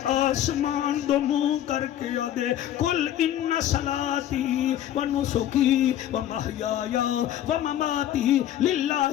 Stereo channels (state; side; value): quieter; right; 11.7 dB